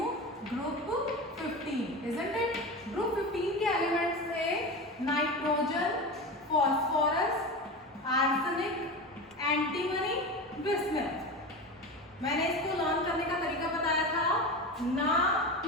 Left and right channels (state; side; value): normal; both; correlation 0.26